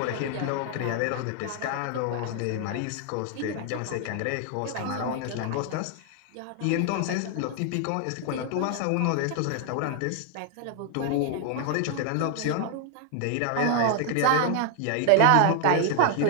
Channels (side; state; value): both; different; correlation 0.00